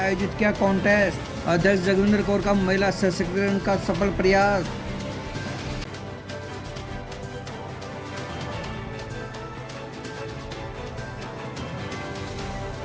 किया कॉन्टेस्ट। अध्यक्ष जगविंदर कौर का महिला सशक्तिकरण का सफल प्रयास।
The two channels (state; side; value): identical; both; correlation 1.00